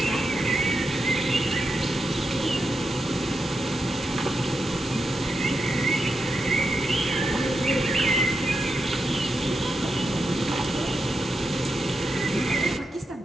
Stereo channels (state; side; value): normal; both; correlation 0.86